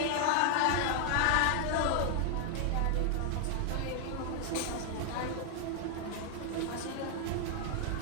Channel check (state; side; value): different; both; correlation 0.00